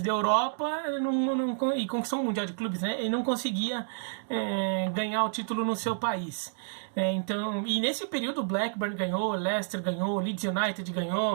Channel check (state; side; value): silent; left; digital silence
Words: Europa e conquistou um Mundial de Clubes, né? Ele não conseguia ganhar o título no seu país. Então, e nesse período o Blackburn ganhou, Leicester ganhou, Leeds United